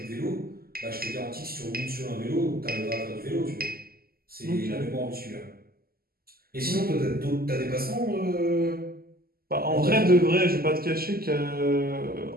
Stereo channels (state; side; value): late; left; 0.44 ms